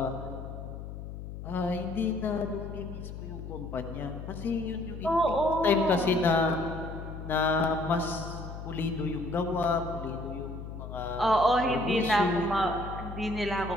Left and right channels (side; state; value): left; noise; hum, 9 dB below the sound